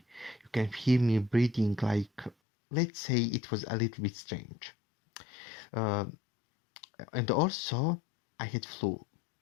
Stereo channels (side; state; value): right; drops out; at 2.4 s